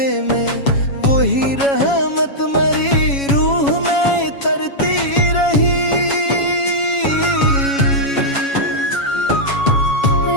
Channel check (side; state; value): right; late; 7.2 ms